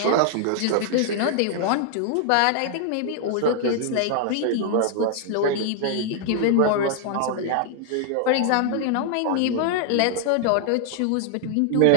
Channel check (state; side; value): different; both; correlation 0.00